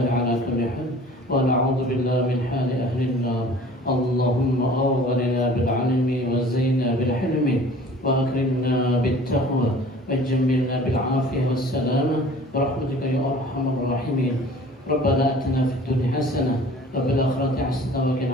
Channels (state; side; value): normal; both; correlation 0.46